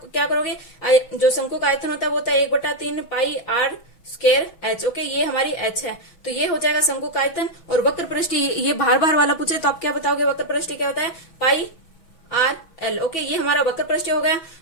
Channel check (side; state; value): right; late; 6.2 ms